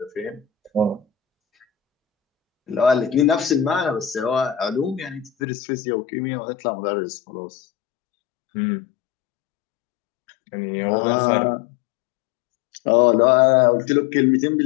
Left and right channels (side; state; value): right; drops out; at 5.3 s